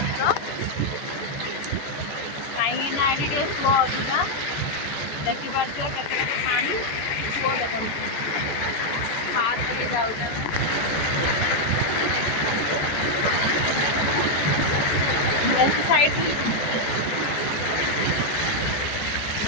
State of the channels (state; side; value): late; right; 14 ms